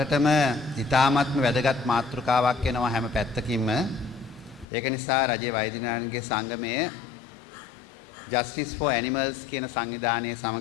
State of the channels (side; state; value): right; drops out; at 4.7 s